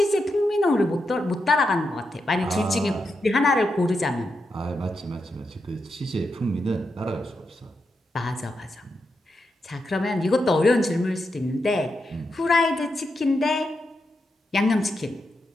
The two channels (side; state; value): both; normal; correlation 0.85